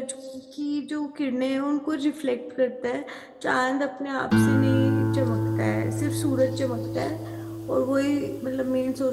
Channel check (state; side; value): identical; both; correlation 1.00